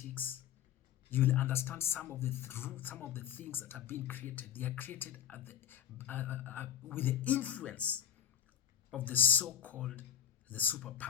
you will understand some of the some of the things that are being created. They are created at with the influence of the so-called the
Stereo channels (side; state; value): right; quieter; 9.4 dB